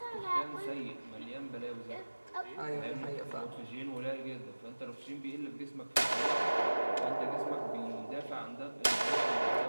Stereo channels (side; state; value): both; inverted; correlation -1.00